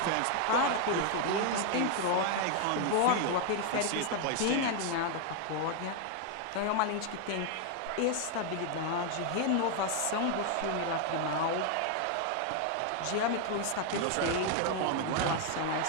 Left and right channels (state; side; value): different; both; correlation 0.00